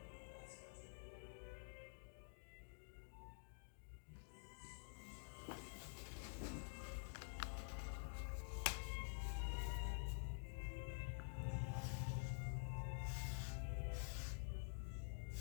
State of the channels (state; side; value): silent; right; digital silence